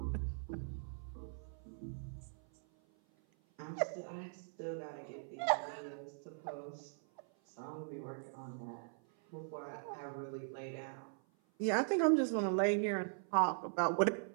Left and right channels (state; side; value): silent; left; 51 dB below the other